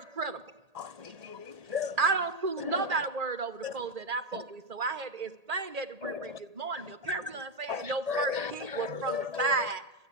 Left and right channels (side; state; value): left; late; 1.8 ms